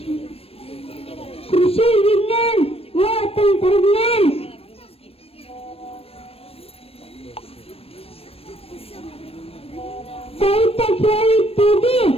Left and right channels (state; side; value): late; right; 0.28 ms